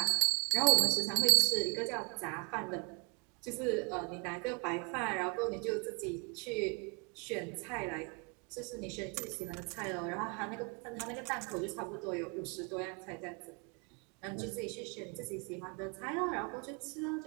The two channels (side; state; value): left; quieter; 31.3 dB